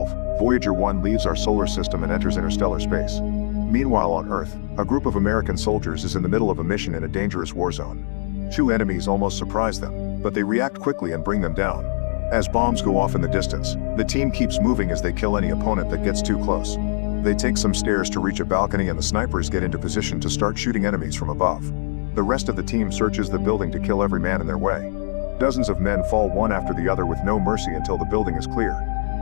Voyager 1 leaves our solar system and enters interstellar space. Meanwhile on Earth, a group of American soldiers is in the middle of a mission in a dangerous war zone. Two enemies almost surprise them, but they react quickly and bring them down. As bombs go off in the distance, the team keeps moving as they kill any opponent that gets too close. They take some stairs to reach a balcony and the snipers get into position to start shooting enemies from above. The rest of the team searches the building to kill every man in their way. Dozens of men fall one after the other with no mercy until the building is clear.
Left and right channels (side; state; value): right; silent; 64 dB below the other